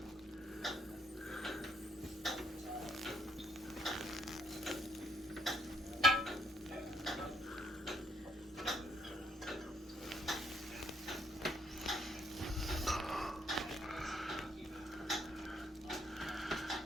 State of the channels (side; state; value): both; normal; correlation 0.71